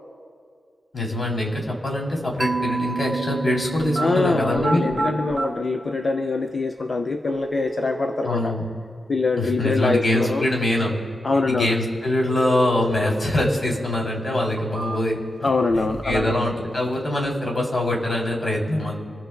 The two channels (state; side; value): normal; both; correlation 0.86